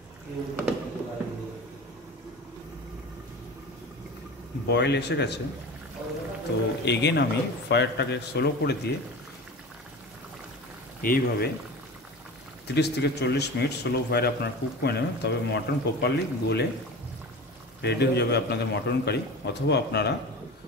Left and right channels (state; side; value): normal; both; correlation 0.33